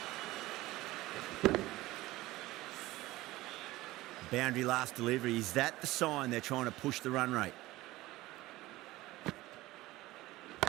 Boundary last delivery. Is that the sign they're trying to push the run rate?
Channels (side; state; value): left; quieter; 18.0 dB